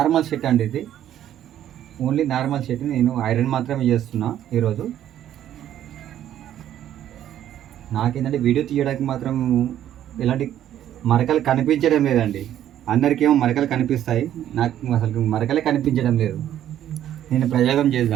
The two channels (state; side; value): quieter; left; 11.3 dB